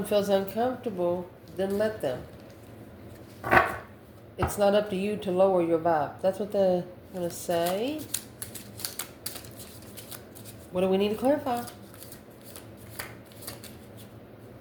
feels uncomfortable, then let them. It's not up to you to lower your vibe. That's what they're going to say. What do we need to clarify?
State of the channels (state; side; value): identical; both; correlation 1.00